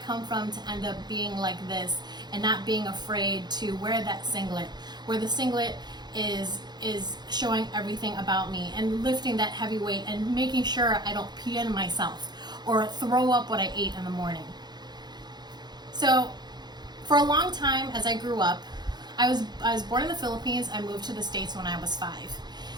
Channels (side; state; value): left; late; 0.21 ms